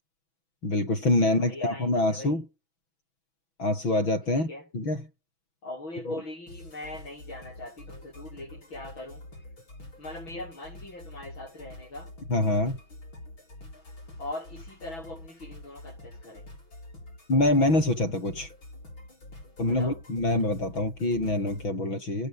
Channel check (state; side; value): late; right; 6.1 ms